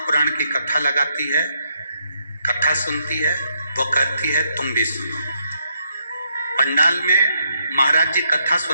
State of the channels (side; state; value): both; inverted; correlation -0.77